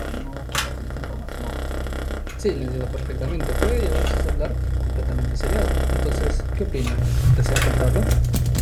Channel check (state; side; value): identical; both; correlation 1.00